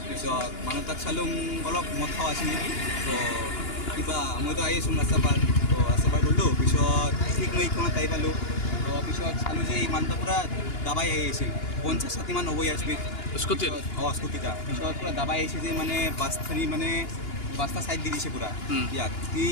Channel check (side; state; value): right; late; 2.9 ms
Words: পিছত মানুহ তাক চালোঁ অলপ মদ খাৱা আছিল নেকি তো কিবা মইতো আহি আছোঁ ৰাস্তা পাৰ তো ৰাস্তা পাৰ কৰিলোঁ পিছত ঠিক মই এইখনত আহি পালোঁ তো পিছত চালোঁ যে এই মানুহটা পূৰা দাবাই আহি আছিল 50-60 মান হ'ব ইয়াৰ স্পীড স্কুটিত অঁ স্কুটিটা পিছত পূৰা দাবাই আহিছে যে মানে বাছখিনি মানে বাছটা ছাইড দি দিছে পূৰা ইয়াক